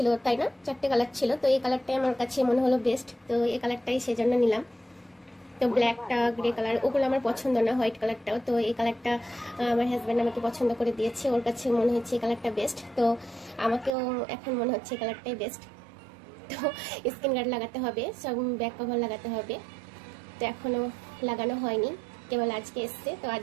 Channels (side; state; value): left; drops out; at 13.9 s